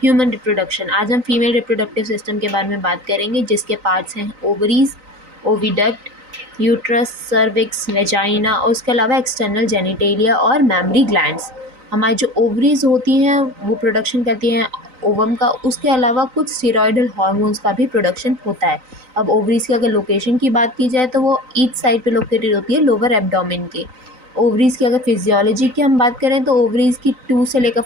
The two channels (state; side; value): late; left; 3.9 ms